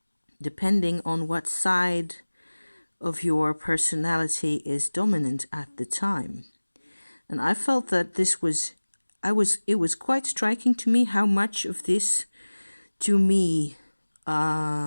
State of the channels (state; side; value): inverted; both; correlation -1.00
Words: depending on what side of your personality is dominant at the time. And I felt that it was quite striking to me how much of this, to me,